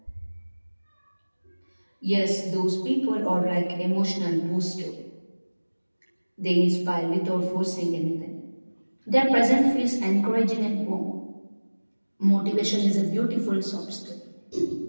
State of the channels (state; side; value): inverted; both; correlation -1.00